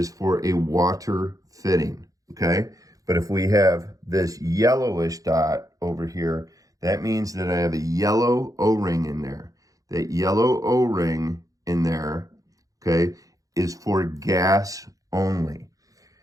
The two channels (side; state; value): left; late; 0.17 ms